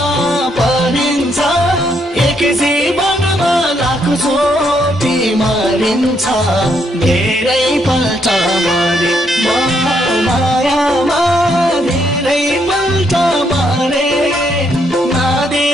परिन्छ एक जीवनमा लाखौं चोटि मरिन्छ धेरै पल्ट मरे मायामा धेरै पल्ट मरे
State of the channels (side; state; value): both; normal; correlation 0.74